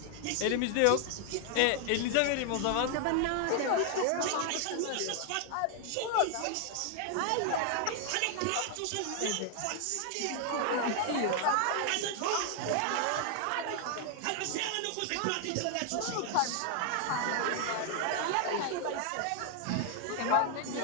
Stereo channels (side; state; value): both; different; correlation 0.00